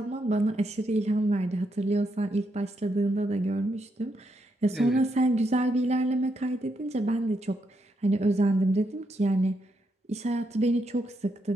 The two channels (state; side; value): normal; both; correlation 0.80